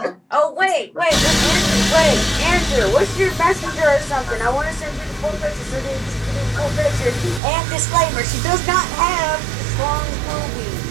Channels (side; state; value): left; drops out; at 7.4 s